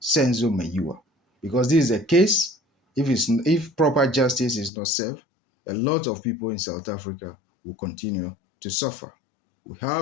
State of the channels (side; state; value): right; drops out; at 4.7 s